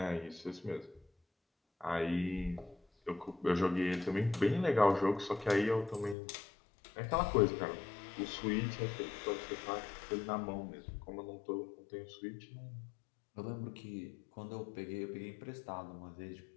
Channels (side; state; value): right; drops out; at 6.2 s